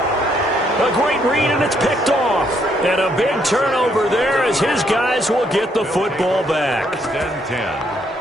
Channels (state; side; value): normal; both; correlation 0.72